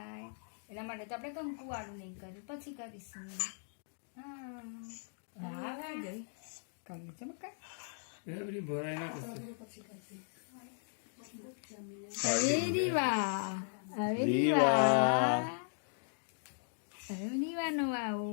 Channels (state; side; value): silent; right; digital silence